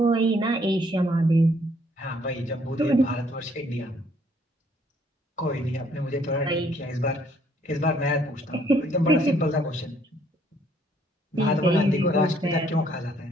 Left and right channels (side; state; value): both; normal; correlation 0.65